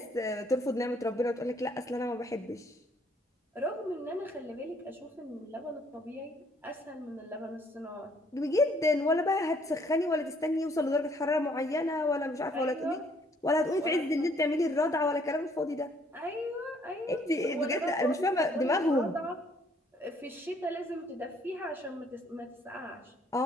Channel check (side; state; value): both; normal; correlation 0.64